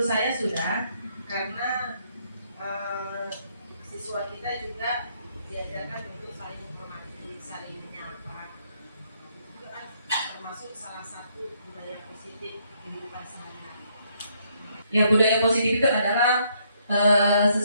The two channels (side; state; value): both; inverted; correlation -0.70